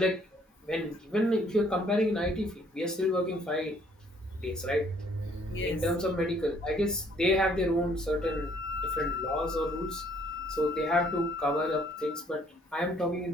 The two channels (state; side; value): normal; both; correlation 0.63